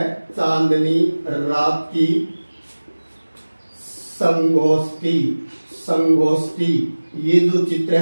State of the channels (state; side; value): inverted; both; correlation -1.00